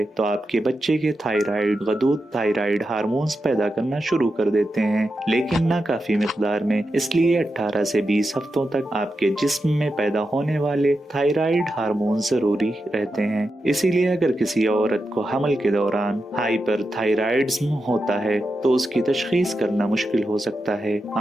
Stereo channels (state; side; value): normal; both; correlation 0.88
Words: तो आपके बच्चे के थायराइड गदूद थायराइड हार्मोन्स पैदा करना शुरू कर देते हैं, लेकिन ना काफी मिकदार में। इसलिए 18 से 20 हफ्तों तक आपके जिस्म में पैदा होने वाले थायराइड हार्मोन जरूरी रहते हैं। इसीलिए अगर किसी औरत को हमल के दौरान हाइपरथायराइडिज्म होता है तो उसकी तशखीस करना मुश्किल हो सकता है।